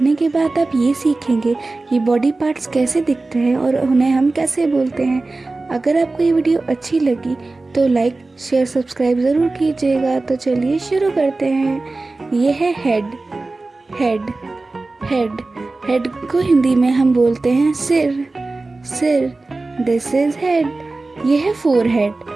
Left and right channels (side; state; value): left; quieter; 3.3 dB